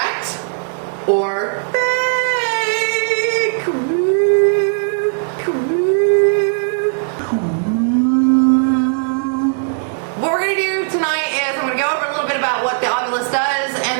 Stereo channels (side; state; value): left; silent; digital silence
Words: or fake? What we're going to do tonight is I'm going to go over a little bit about what the Ovilus does,